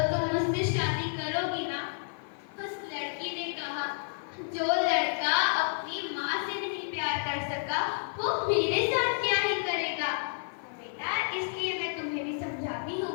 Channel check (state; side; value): silent; right; 56 dB below the other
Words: तुम मुझसे शादी करोगी ना? उस लड़की ने कहा, जो लड़का अपनी माँ से नहीं प्यार कर सका वो मेरे साथ क्या ही करेगा। तो बेटा, इसलिए मैं तुम्हें भी समझाती हूँ,